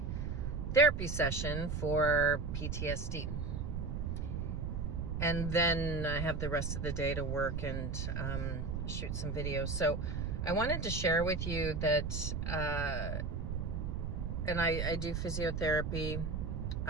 therapy session for PTSD. And then I have the rest of the day to work and shoot some videos. So I wanted to share with you that, and I do physiotherapy.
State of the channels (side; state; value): right; noise; rumble, 2 dB below the sound